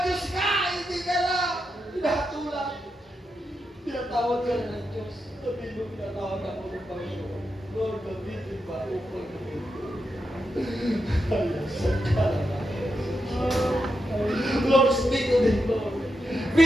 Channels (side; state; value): both; normal; correlation 0.86